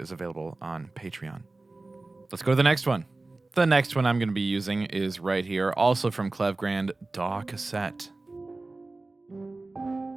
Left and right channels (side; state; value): left; quieter; 3.2 dB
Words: is available on Patreon. Let's go to the next one. The next one I'm going to be using is right here, also from Klevgrand, DAW Cassette.